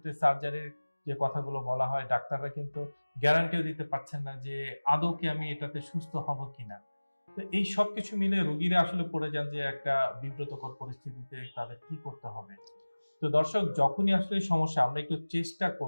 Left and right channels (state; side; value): inverted; both; correlation -1.00